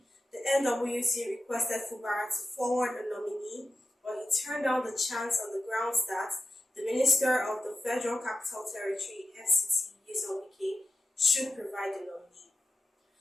the NWC requested Fubara to forward a nominee, but he turned down the chance on the grounds that the Minister of the Federal Capital Territory (FCT), Wike, should provide the nominee.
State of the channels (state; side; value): normal; both; correlation 0.92